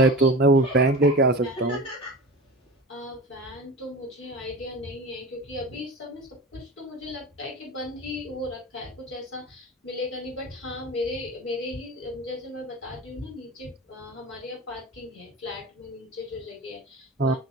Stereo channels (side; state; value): both; normal; correlation 0.32